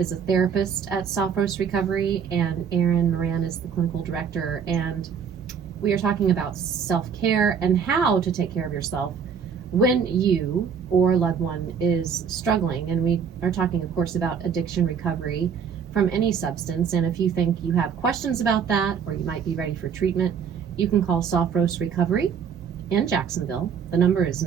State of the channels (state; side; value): quieter; left; 7.0 dB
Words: is a therapist at Soft Roast Recovery, and Erin Moran is the clinical director. And we are talking about self-care and how to take care of yourself when you or a loved one is struggling. And we are talking, of course, about addiction recovery from any substance. And if you think you have questions about that, or you might be ready for treatment, you can call Soft Roast Recovery in Jacksonville. The number is